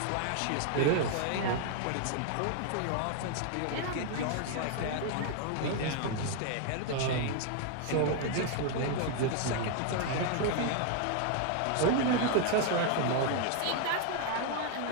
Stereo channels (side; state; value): both; different; correlation 0.00